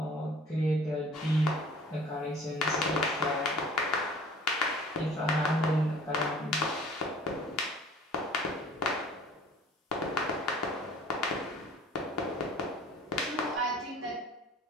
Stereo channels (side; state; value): both; normal; correlation 0.49